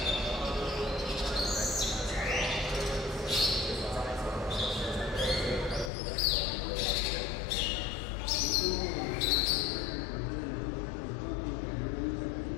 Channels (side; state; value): right; drops out; at 5.9 s